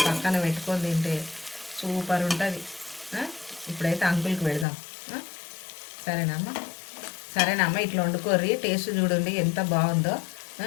పక్కన పెట్టుకొని తింటే సూపర్ ఉంటుంది. ఇప్పుడైతే అంకుల్కి పెడదాం. సరేనమ్మా ఇట్లా వండుకోర్రి. టేస్ట్ చూడండి ఎంత బాగుందో.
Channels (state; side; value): drops out; right; at 4.7 s